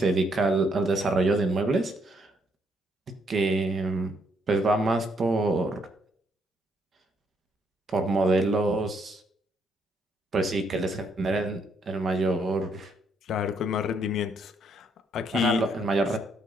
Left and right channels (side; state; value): both; normal; correlation 0.72